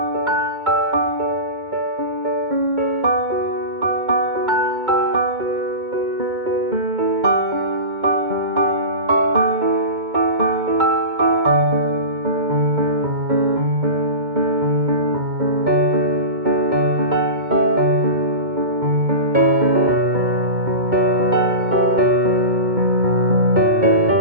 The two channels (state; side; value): late; left; 2.2 ms